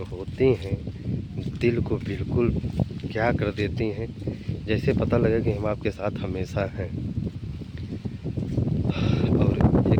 होती हैं, दिल को बिल्कुल क्या कर देती हैं, जैसे पता लगे कि हम आपके साथ हमेशा हैं। और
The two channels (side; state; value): both; identical; correlation 1.00